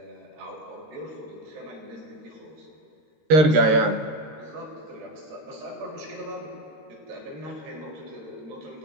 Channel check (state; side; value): late; left; 13 ms